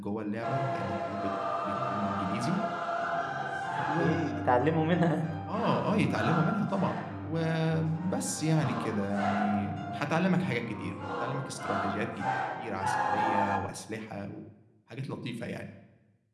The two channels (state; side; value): identical; both; correlation 1.00